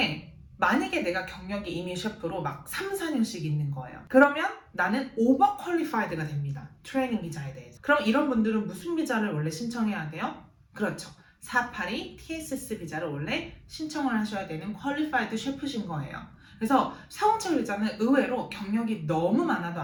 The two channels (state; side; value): identical; both; correlation 1.00